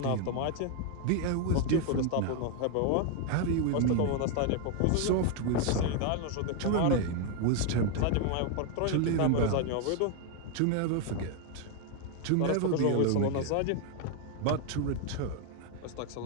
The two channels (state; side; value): different; both; correlation 0.01